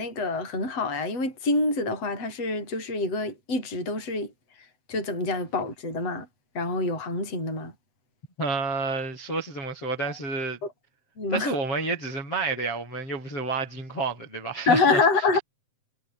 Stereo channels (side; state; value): right; late; 7.6 ms